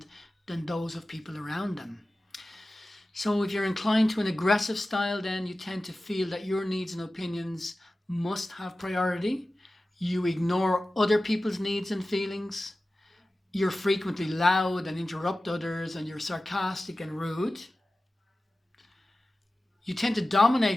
than those of people around them. So if you're inclined to an aggressive style, then you tend to feel that your needs and opinions must have priority. You ignore other people's needs and feelings. You're frequently loud and interrupt others, and you're sarcastic and rude. You tend to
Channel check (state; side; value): normal; both; correlation 0.96